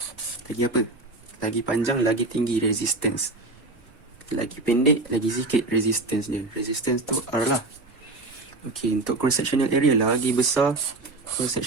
apa? Lagi panjang, lagi tinggi resistance. Lagi pendek, lagi sikit resistance dia. Resistance tu R lah. Okay, untuk cross-sectional area, lagi besar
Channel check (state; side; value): quieter; left; 3.1 dB